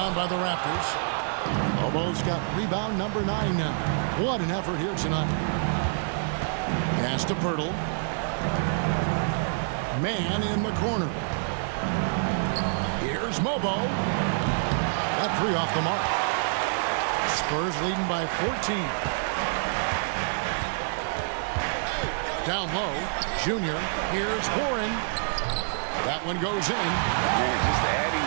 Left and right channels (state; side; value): silent; left; 60 dB below the other